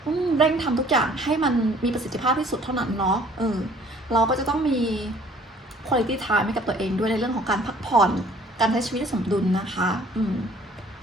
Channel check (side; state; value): both; normal; correlation 0.55